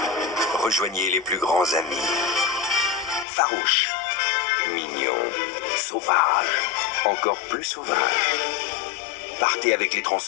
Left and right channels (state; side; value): drops out; right; at 3.2 s